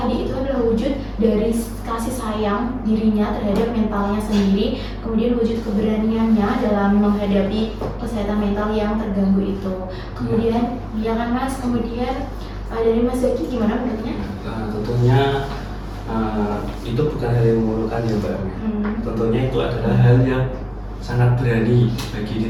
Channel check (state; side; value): identical; both; correlation 1.00